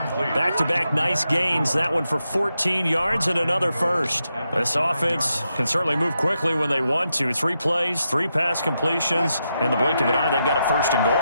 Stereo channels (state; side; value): inverted; both; correlation -0.85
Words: Back-to-back nice gains. That one for 14 yards and another first. This offense can certainly move quickly when they want to. 3 plays, 3 pass completions. In the blink of an eye, they've got a 1st and